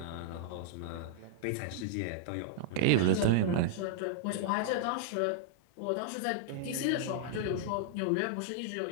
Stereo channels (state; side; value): different; both; correlation -0.01